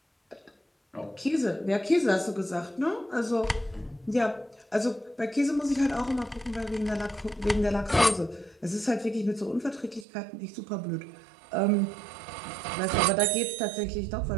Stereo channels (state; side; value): drops out; left; at 10.1 s